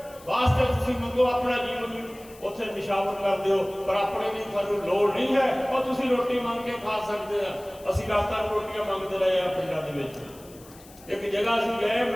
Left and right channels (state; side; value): noise; left; hiss, 22 dB below the sound